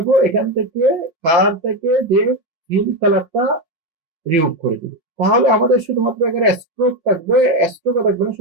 এখান থেকে কালার থেকে যে ফিল কালারটা রিমুভ করে দিব। তাহলে আমাদের শুধুমাত্র এখানে স্ট্রোক থাকবে, স্ট্রোকও থাকবে না,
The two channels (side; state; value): left; late; 6.0 ms